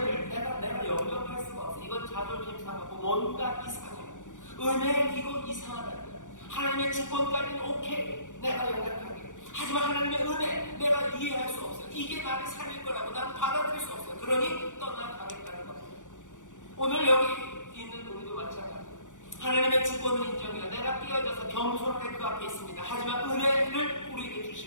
내가 영접할 수가 없어. 이건 자존심 상하고 뭔가 이상해요. 은혜 이건 이상하다. 하나님의 주권까지는 오케이. 내가 영접하게. 하지만 하나님의 은혜 내가 이해할 수 없어요. 이게 나를 살릴 거라고 난 받아들일 수 없어요. 그러니 떠나가겠다는 겁니다. 오늘 여기 있는 우리도 마찬가지예요. 하나님의 주권을 인정해요. 내가 깨어져서 겸손하게 그 앞에 있습니다. 하지만 은혜를 우리에게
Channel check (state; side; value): late; right; 0.87 ms